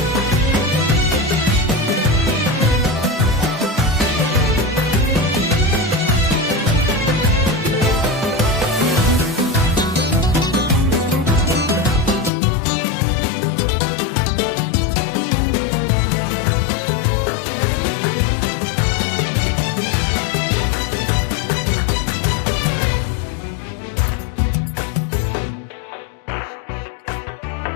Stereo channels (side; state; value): right; drops out; at 12.3 s